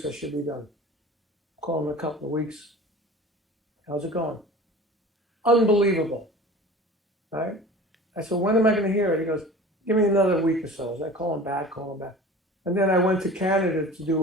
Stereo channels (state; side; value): normal; both; correlation 0.40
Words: I should be done. Call him in a couple of weeks. How's it going? Unbelievable. Right? I said, when am I going to hear it? He goes, give me another week or so. So I call him back. And then I went to Canada to